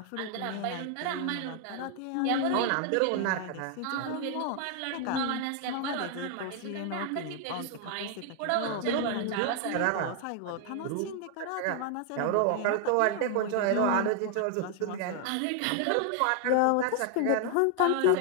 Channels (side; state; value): both; different; correlation 0.00